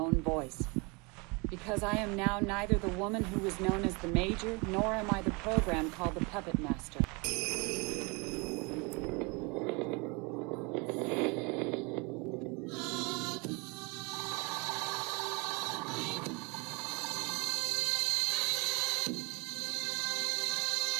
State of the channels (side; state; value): left; quieter; 29.1 dB